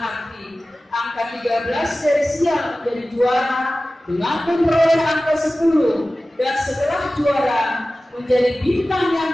angka 13 dari sial menjadi juara dengan memperoleh angka 10 dan setelah juara menjadi bintang yang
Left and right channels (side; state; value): both; normal; correlation 0.96